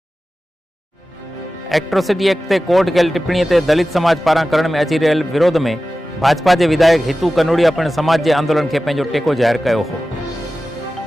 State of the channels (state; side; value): normal; both; correlation 0.95